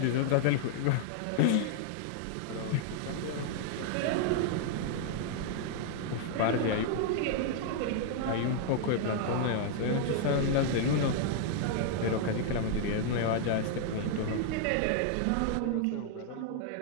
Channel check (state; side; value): different; both; correlation -0.01